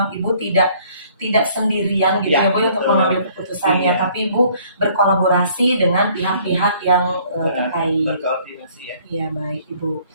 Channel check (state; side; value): inverted; both; correlation -0.59